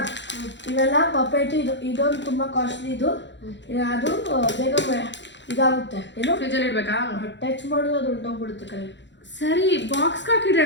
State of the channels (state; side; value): late; right; 0.52 ms